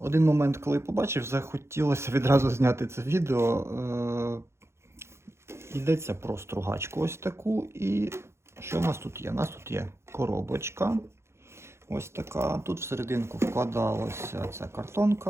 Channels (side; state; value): left; late; 0.13 ms